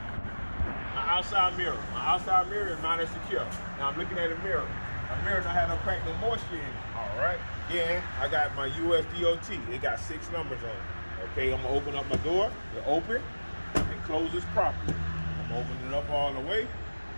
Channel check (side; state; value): both; inverted; correlation -1.00